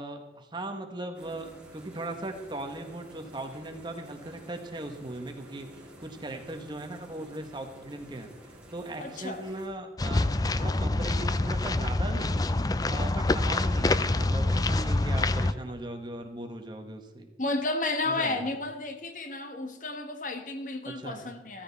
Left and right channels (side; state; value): both; normal; correlation 0.61